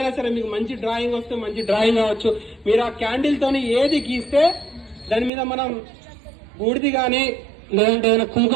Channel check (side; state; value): left; drops out; at 5.3 s